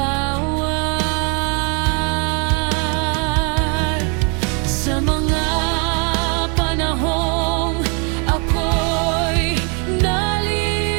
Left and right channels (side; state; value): left; quieter; 35.6 dB